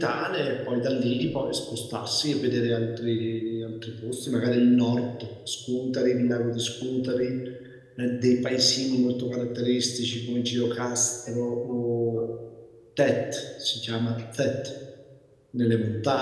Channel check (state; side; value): identical; both; correlation 1.00